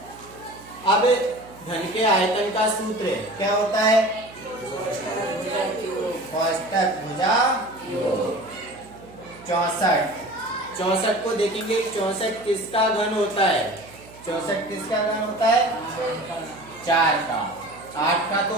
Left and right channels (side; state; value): right; noise; hum, 21 dB below the sound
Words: अब घन के आयतन का सूत्र क्या होता है? कोष्ठक भुजा 64 को देखेंगे, 64 किसका घन होता है? 64 किसका घन होता है? 4 का। 8 का तो